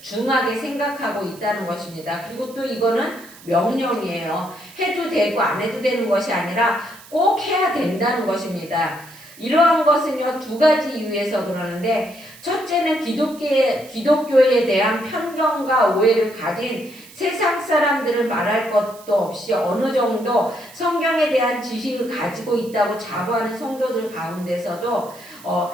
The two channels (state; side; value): noise; right; hiss, 21 dB below the sound